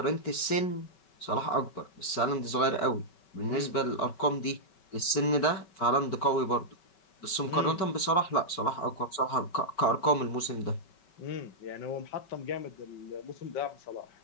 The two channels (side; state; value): right; late; 5.3 ms